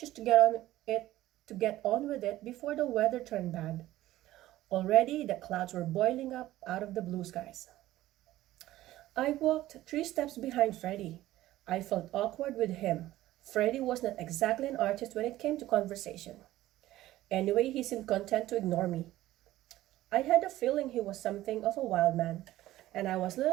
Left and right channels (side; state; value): left; quieter; 15.3 dB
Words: to get on with it before the weather turned bad. Already the clouds were boiling up out of the blue skies. I walked 3 steps behind Freddie. I felt awkward with him. Freddie was not exactly an artist when it came to conversation. Anyway, he seemed content to ignore me. I had a feeling he was something of a wild man, and I was a